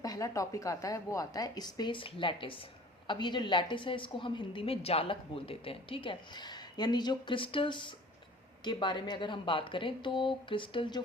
टॉपिक आता है वो आता है स्पेस लैटिस। अब ये जो लैटिस है इसको हम हिंदी में जालक बोल देते हैं, ठीक है। यानी जो क्रिस्टल्स के बारे में अगर हम बात करें तो क्रिस्टल जो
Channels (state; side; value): normal; both; correlation 0.47